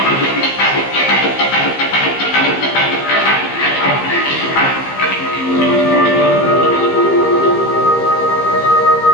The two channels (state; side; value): late; right; 15 ms